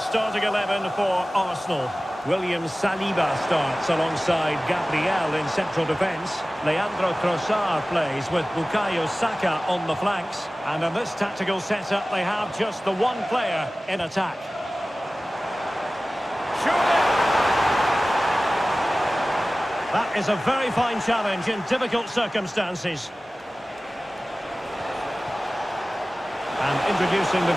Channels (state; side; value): normal; both; correlation 0.97